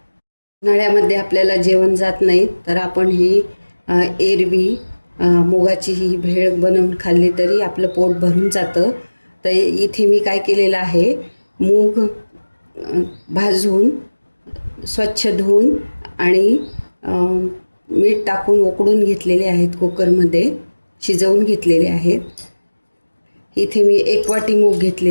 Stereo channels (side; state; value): both; inverted; correlation -1.00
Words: उन्हाळ्यामध्ये आपल्याला जेवण जात नाही तर आपण ही एरवी मुगाची ही भेळ बनवून खाल्ली तरी आपलं पोट भरून जातं. तर इथे मी काय केलेलं आहे, मूग भाजून स्वच्छ धुवून आणि मीठ टाकून उकडून घेतलेले आहेत, कुकरमध्ये शिजवून घेतलेले आहेत. इथे मी 1 वाटी मूग